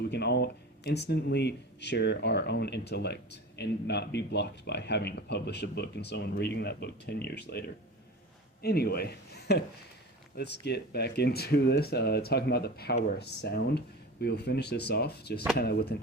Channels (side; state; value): both; normal; correlation 0.33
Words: we can all instantly share our own intellect and not be blocked by having to publish a book and someone reading that book 10 years later. Anyway, let's get back into this, talking about the power of sound. We will finish this off just kind of with an